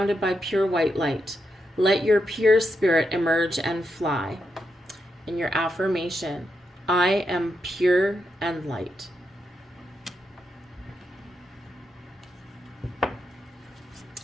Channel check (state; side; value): normal; both; correlation 0.84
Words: by pure white light. Let your pure spirit emerge and fly. And your affirmation, I am pure and light.